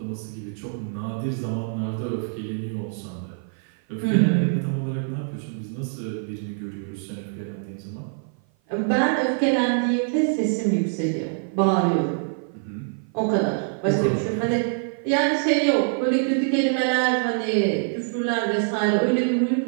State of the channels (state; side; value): silent; left; 55 dB below the other